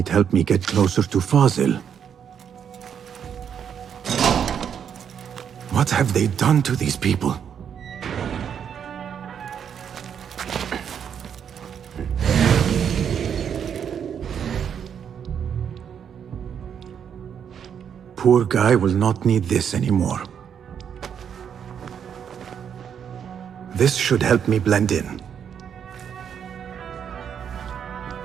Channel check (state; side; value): quieter; left; 8.1 dB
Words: help me get closer to Fazil. What have they done to these people? poor guy will not need this anymore. This should help me blend in.